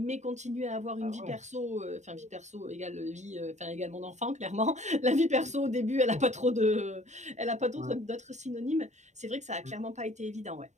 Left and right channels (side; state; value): left; late; 0.34 ms